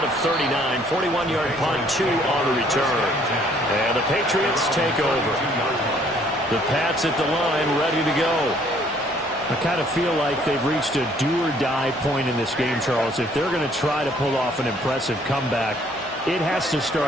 of 39. 41-yard punt, 2 on the return. And the Patriots take over. The Pats at the line ready to go. I kind of feel like they've reached a do-or-die point in this game, Charles. If they're going to try to pull off an impressive comeback, it has to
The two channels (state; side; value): normal; both; correlation 0.62